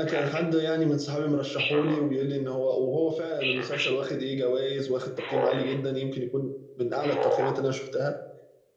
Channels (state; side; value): identical; both; correlation 1.00